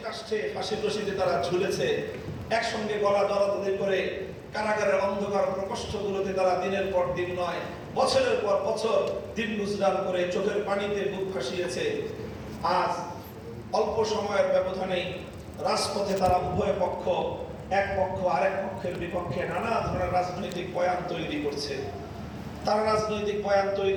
কাষ্ঠে ফাঁসির রশিতে তারা ঝুলেছে, একসঙ্গে গলা দরাদরি করে কারাগারের অন্ধকার প্রকোষ্ঠগুলোতে তারা দিনের পর দিন নয় বছরের পর বছর দিন গুজরান করে চোখের পানিতে বুক ভাসিয়েছে। আজ অল্প সময়ের ব্যবধানেই রাজপথে তারা উভয় পক্ষ, এক পক্ষ আরেক পক্ষের বিপক্ষে নানা ধরনের রাজনৈতিক বয়ান তৈরি করছে। তারা রাজনৈতিক বয়ান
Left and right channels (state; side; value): identical; both; correlation 1.00